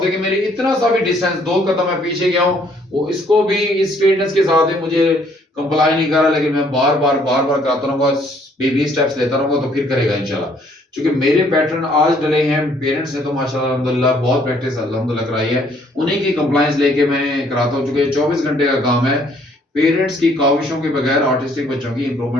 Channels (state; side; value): normal; both; correlation 0.64